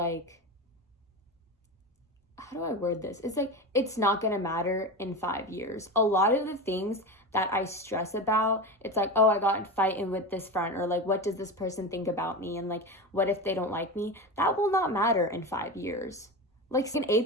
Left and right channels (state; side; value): normal; both; correlation 0.22